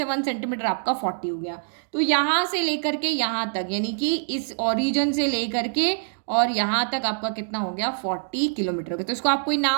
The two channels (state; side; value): silent; left; 62 dB below the other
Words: 1 सेंटीमीटर आपका 40 हो गया। तो यहाँ से लेकर के यहाँ तक, यानी कि इस ओरिजिन से लेकर के और यहाँ तक आपका कितना हो गया, 40 किलोमीटर हो गया। तो इसको आप कोई